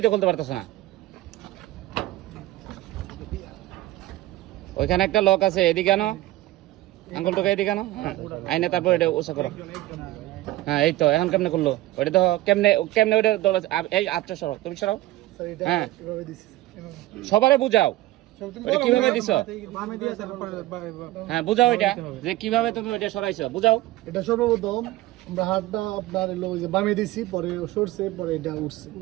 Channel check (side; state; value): left; quieter; 16.7 dB